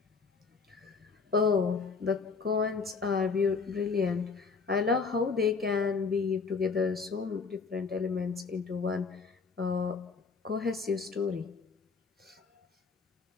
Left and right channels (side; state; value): right; quieter; 4.9 dB